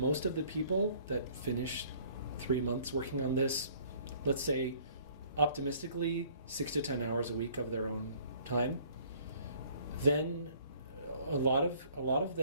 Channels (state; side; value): inverted; both; correlation -0.57